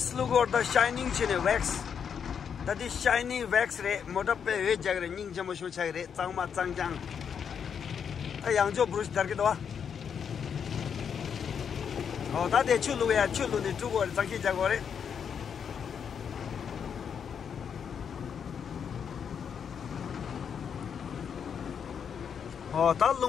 look or the shining chin wax. That is shiny wax ray, Motape, Jagger, Ning Jamushu Chagre, Tangma Tangjang. A young Joe Bruce Darkidwa. Oh, that is Chulu, we are Chulu, the two words, Taki Jagore. Oh, that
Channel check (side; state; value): right; quieter; 7.3 dB